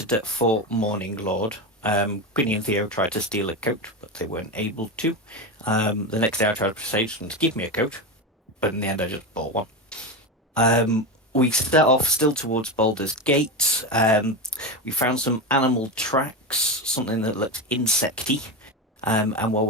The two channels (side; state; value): both; normal; correlation 0.18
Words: at Fort Morning Lord. Quinny and Theo tried to steal a coat, but they weren't able to. The next day I tried to persuade them to give me a coat, but in the end I just bought one. We set off still towards Baldur's Gate. We found some animal tracks, something that looked insecty. And while